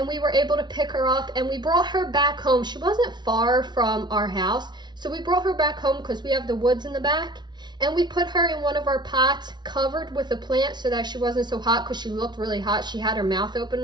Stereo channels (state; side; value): late; left; 0.21 ms